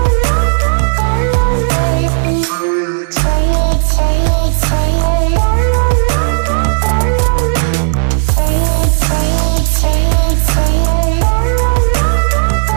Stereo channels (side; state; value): left; silent; digital silence